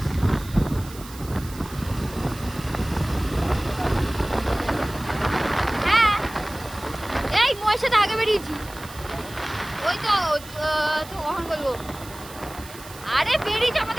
সাথে আগে বেরিয়েছি, ওই তো কখন বলবো, আরে বেরিয়েছি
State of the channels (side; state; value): right; noise; hiss, 17 dB below the sound